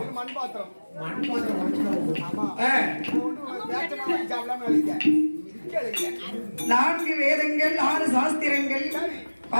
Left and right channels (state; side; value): inverted; both; correlation -1.00